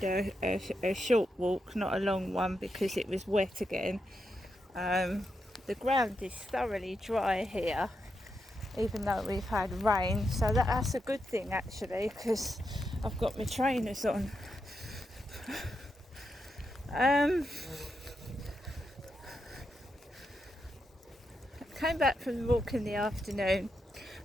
a short walk, not a long one because it was wet again. The ground is thoroughly dry here, even though we've had rain, so that's a good thing actually because I've got my trainers on. Came back from the walk in the afternoon,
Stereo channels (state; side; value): normal; both; correlation 0.85